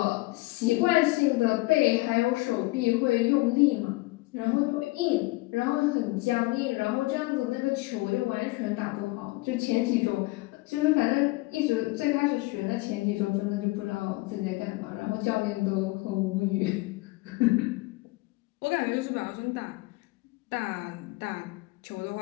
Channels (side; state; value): right; quieter; 22.3 dB